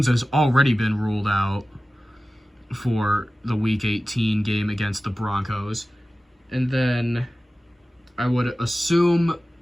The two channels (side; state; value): both; normal; correlation 0.96